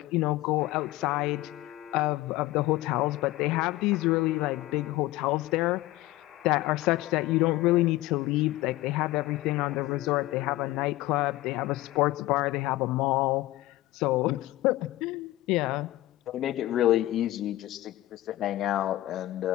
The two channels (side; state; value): right; quieter; 17.2 dB